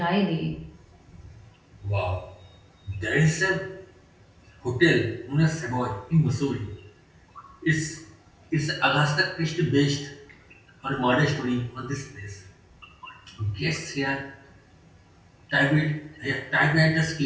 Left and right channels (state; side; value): identical; both; correlation 1.00